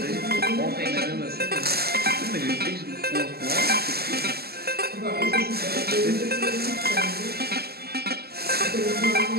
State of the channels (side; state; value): left; late; 0.46 ms